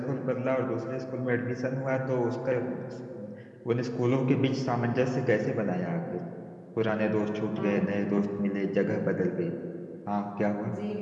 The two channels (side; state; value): both; identical; correlation 1.00